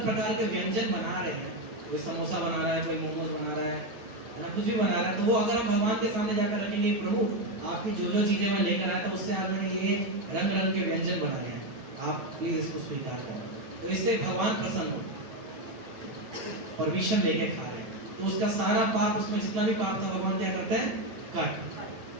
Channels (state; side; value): late; left; 8.9 ms